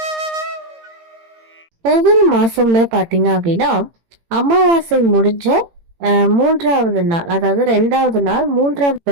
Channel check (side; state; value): left; late; 18 ms